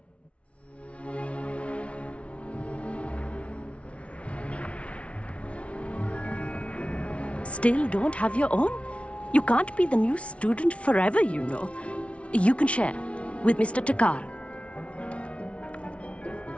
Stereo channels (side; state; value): right; late; 0.062 ms